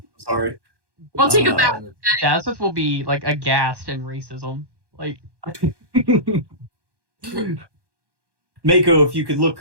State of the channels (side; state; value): left; late; 1.2 ms